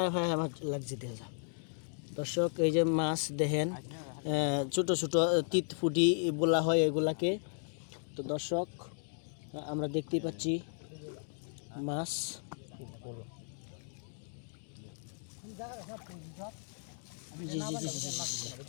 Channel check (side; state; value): right; silent; 54 dB below the other